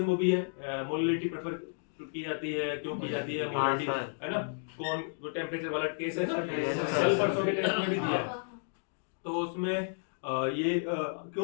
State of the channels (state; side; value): silent; right; digital silence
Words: वो भी है, मोलिलिटी प्रेफर की जाती है, क्यों की जाती है मोलिलिटी, है ना, कौन वो टेम्परेचर वाला केस है ना, कल परसों के टेस्ट में भी दिया है, तो उसमें ये